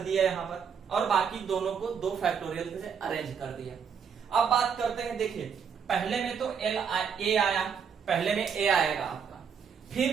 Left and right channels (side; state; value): left; quieter; 6.8 dB